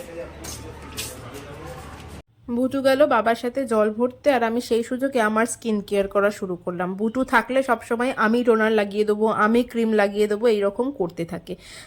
বুটু গেল বাবার সাথে জল ভরতে, আর আমি সেই সুযোগে আমার স্কিন কেয়ার করা শুরু করলাম। বুটু থাকলে সবসময় আমি টোনার লাগিয়ে দেবো, আমি ক্রিম লাগিয়ে দেবো, এইরকম করতে থাকে।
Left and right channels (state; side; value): identical; both; correlation 1.00